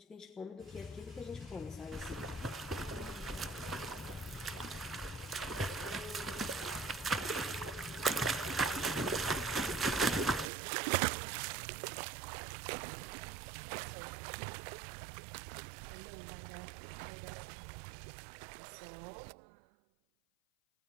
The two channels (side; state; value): left; drops out; at 10.5 s